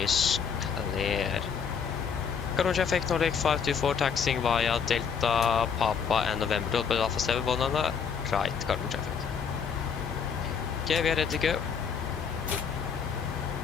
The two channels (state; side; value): quieter; right; 6.6 dB